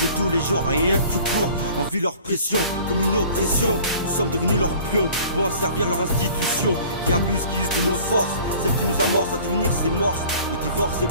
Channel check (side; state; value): both; inverted; correlation -0.48